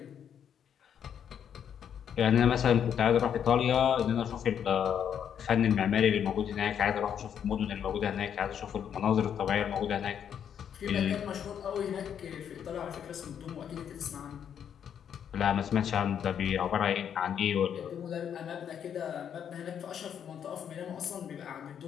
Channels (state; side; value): quieter; right; 8.6 dB